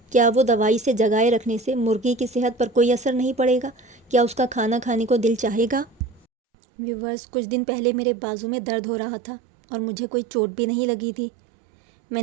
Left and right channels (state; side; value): drops out; left; at 6.2 s